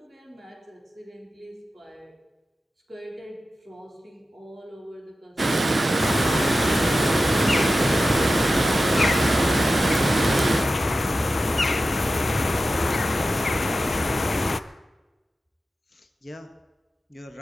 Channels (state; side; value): normal; both; correlation 0.93